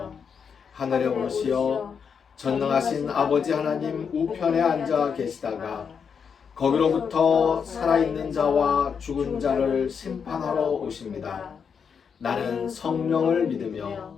하늘에 오르시어 전능하신 아버지 하나님 우편에 앉아 계시다가 거기로부터 살아있는 자와 죽은 자를 심판하러 오십니다. 나는 성령을 믿으며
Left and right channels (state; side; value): quieter; right; 6.5 dB